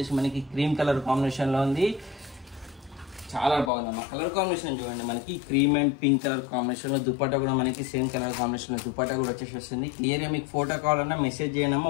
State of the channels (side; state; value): right; drops out; at 3.7 s